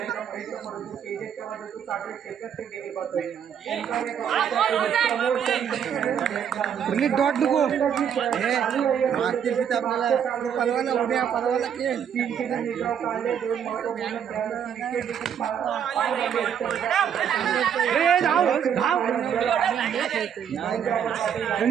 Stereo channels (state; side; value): quieter; left; 8.4 dB